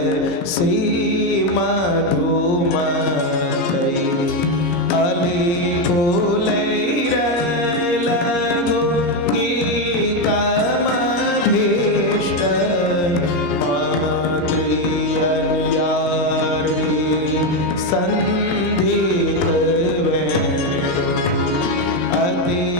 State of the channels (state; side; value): late; right; 17 ms